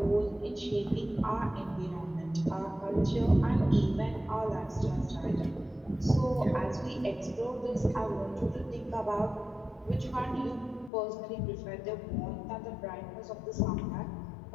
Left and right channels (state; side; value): drops out; right; at 10.9 s